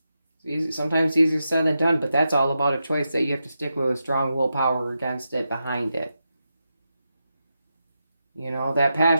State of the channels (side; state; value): both; inverted; correlation -0.88